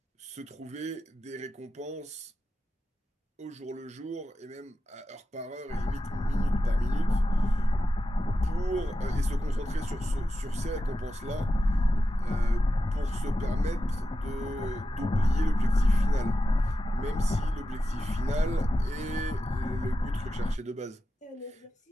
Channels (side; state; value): both; normal; correlation 0.91